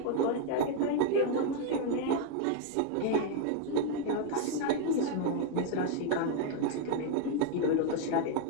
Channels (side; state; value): both; different; correlation 0.00